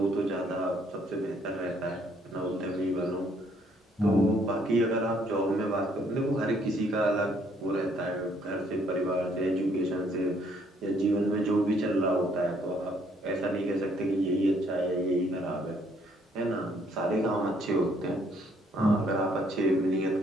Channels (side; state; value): both; normal; correlation 0.66